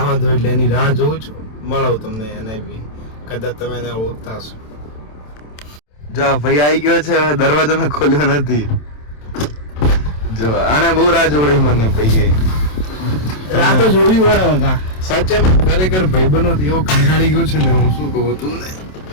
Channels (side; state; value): right; late; 27 ms